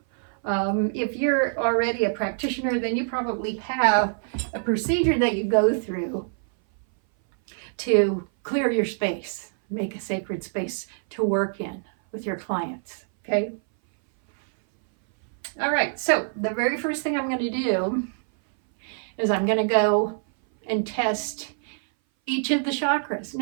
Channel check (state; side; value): silent; left; 59 dB below the other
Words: If you're already a practitioner, then you probably have a procedure that you go through to clear your space, make a sacred space to work in with your clients, okay? All right, so the very first thing I'm going to do is I'm going to go and test each of the chakras.